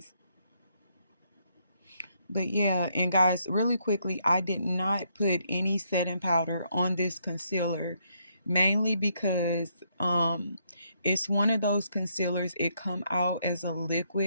But yeah, and guys, really quickly, I did not put any setting powder on this concealer, mainly because it's one of those concealers, it come out as a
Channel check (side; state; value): both; inverted; correlation -0.74